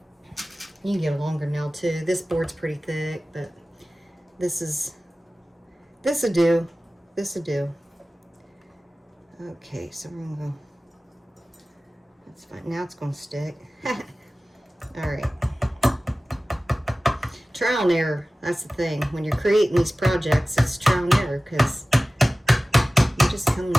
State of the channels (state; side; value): normal; both; correlation 0.97